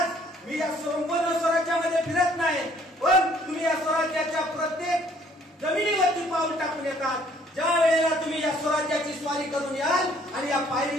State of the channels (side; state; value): both; normal; correlation 0.61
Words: मी या संपूर्ण स्वराज्यामध्ये फिरत नाही, पण तुम्ही या स्वराज्याच्या प्रत्येक जमिनीवरती पाऊल टाकून येतात. ज्या वेळेला तुम्ही या स्वराज्याची स्वारी करून याल आणि या